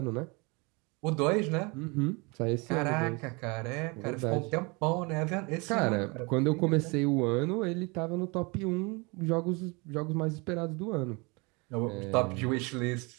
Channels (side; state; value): left; quieter; 28.6 dB